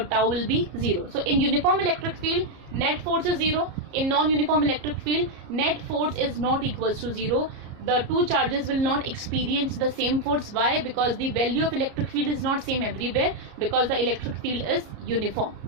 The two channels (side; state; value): left; late; 34 ms